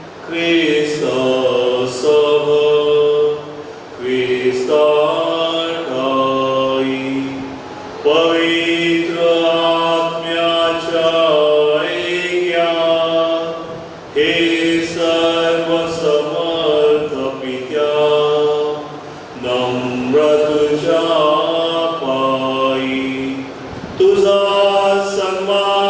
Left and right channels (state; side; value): identical; both; correlation 1.00